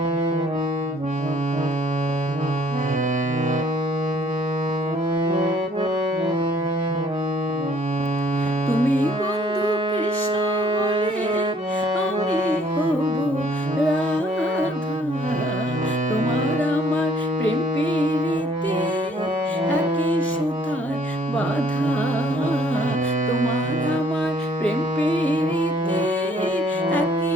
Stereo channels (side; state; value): both; normal; correlation 0.61